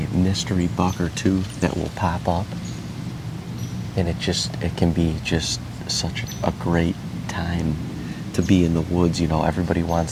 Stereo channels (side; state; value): both; identical; correlation 1.00